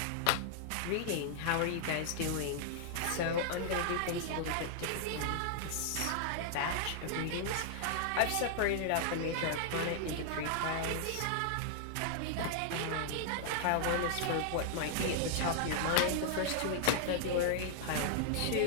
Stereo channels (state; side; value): different; both; correlation -0.01